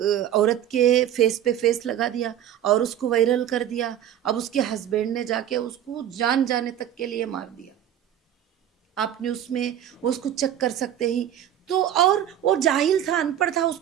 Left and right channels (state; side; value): quieter; left; 10.7 dB